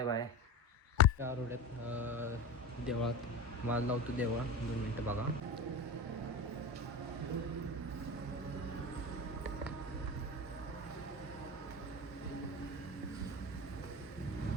bye. त्या रोड्यात देवळात माल लावतो. देवळा 2 मिनटं बघा.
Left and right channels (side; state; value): both; normal; correlation 0.26